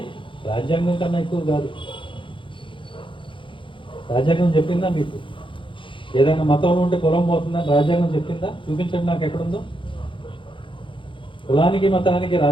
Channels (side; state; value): right; late; 0.25 ms